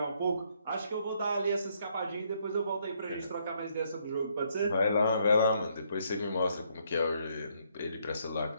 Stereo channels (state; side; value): inverted; both; correlation -0.71